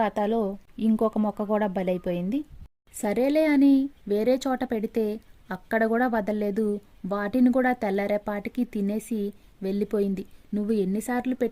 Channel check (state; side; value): identical; both; correlation 1.00